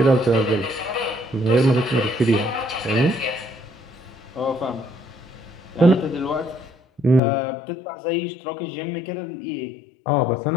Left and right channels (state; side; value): drops out; right; at 7.2 s